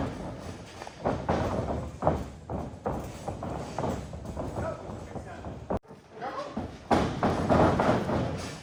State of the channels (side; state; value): both; identical; correlation 1.00